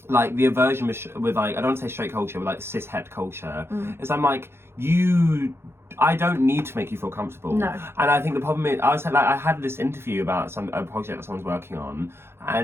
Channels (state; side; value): late; left; 0.12 ms